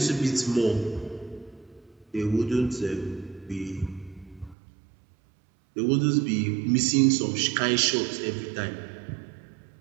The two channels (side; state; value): left; drops out; at 4.5 s